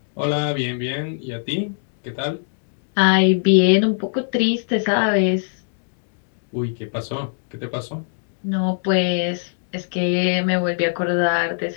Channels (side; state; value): right; silent; digital silence